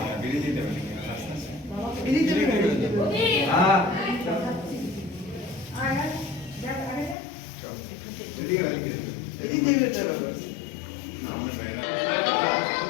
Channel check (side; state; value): right; drops out; at 7.2 s